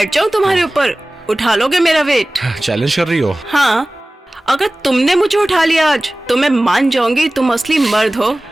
जाऊं तुम्हारे ऊपर? उठा लोगे मेरा वेट? चैलेंज कर रही हो? हाँ, अगर तुमने मुझे उठा लिया आज तो मैं मान जाऊंगी तुम असली मर्द हो।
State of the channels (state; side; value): normal; both; correlation 0.98